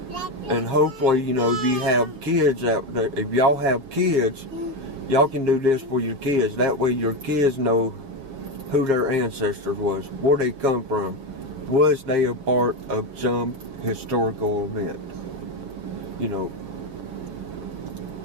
And hopefully, you know, if you have kids out there, if y'all have kids, y'all can do this for your kids. That way your kids know who their ancestors was, where they come from. Was they a part of some historical event? You know,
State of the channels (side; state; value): left; late; 6.9 ms